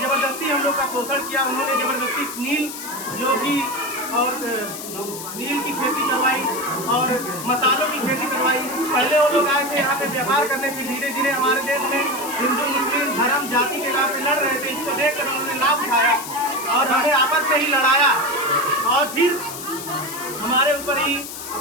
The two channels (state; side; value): noise; left; hiss, 10 dB below the sound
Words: जबरदस्ती हम लोग का शोषण किया। उन्होंने जबरदस्ती नील जो कि और नील की खेती करवाई और मसालों की खेती करवाई। पहले वो लोग आए थे यहाँ पे व्यापार करने, फिर धीरे धीरे हमारे देश में हिंदू मुस्लिम धर्म जाति के नाम पे लड़ रहे थे। इसको देखकर उन्होंने लाभ उठाया और हमें आपस में ही लड़ाया और फिर हमारे ऊपर ही